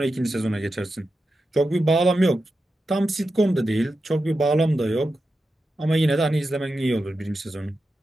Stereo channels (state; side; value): normal; both; correlation 0.90